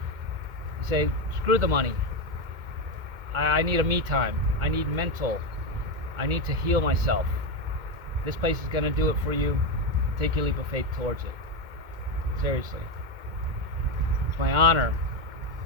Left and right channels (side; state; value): left; late; 2.1 ms